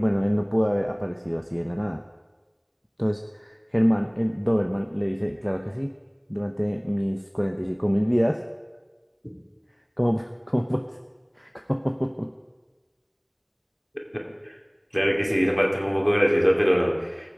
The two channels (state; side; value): identical; both; correlation 1.00